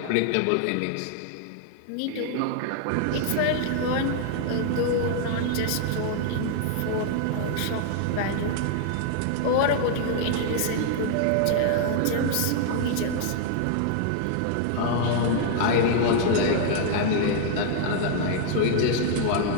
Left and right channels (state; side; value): different; both; correlation 0.00